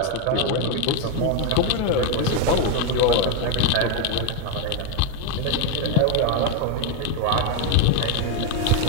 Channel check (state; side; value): different; both; correlation 0.01